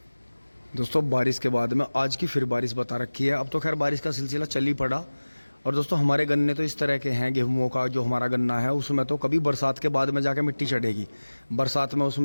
दोस्तों, बारिश के बाद में आज की फिर बारिश बता रखी है। अब तो खैर बारिश का सिलसिला चल ही पड़ा। और दोस्तों, हमारे गन्ने तो इस तरह के हैं, गेहूं का जो हमारा गन्ना है उसमें तो कभी बरसात के बाद में जाके मिट्टी चढ़ेगी। बरसात में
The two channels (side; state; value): both; inverted; correlation -1.00